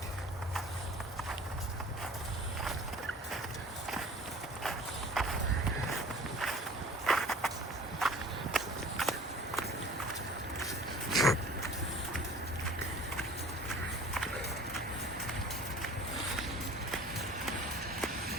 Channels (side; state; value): both; normal; correlation 0.45